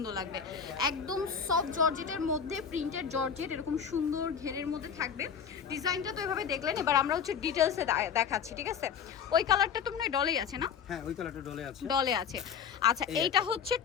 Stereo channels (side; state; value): right; quieter; 7.2 dB